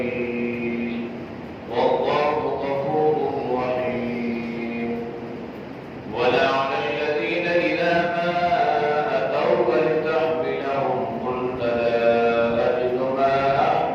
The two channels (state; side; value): identical; both; correlation 1.00